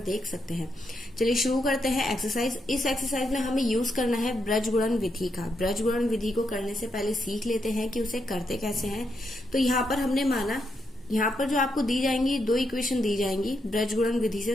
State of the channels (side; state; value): both; normal; correlation 0.81